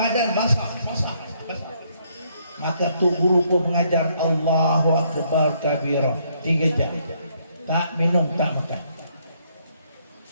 basah. Maka Tuan Guru pun mengajar Allahu Akbar kabira 3 jam. Tak minum, tak makan.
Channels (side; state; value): both; inverted; correlation -0.70